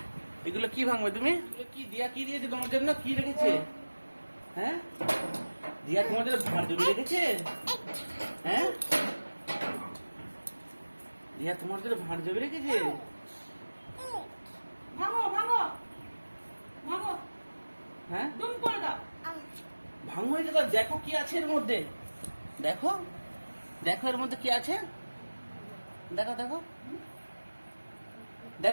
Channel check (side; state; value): both; inverted; correlation -1.00